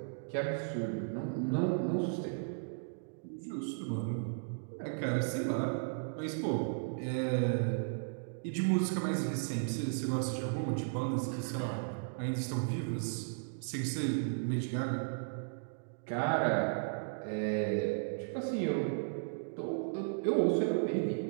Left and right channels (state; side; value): silent; left; digital silence